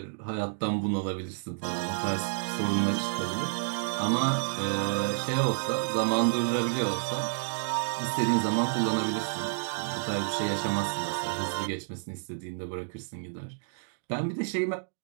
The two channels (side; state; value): left; silent; digital silence